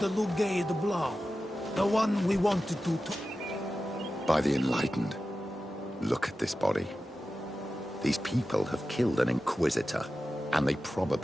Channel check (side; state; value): both; normal; correlation 0.93